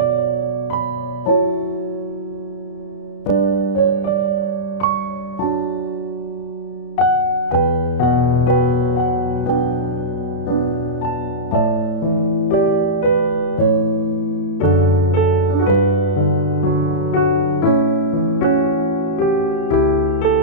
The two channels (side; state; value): right; late; 31 ms